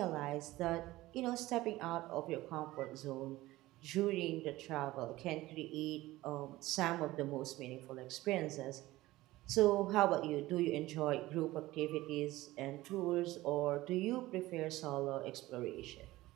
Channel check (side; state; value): left; quieter; 17.8 dB